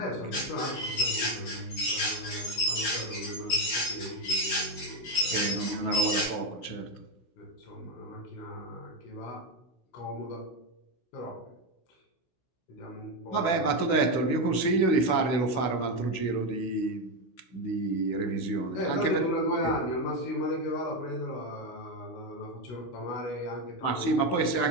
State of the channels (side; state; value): right; late; 16 ms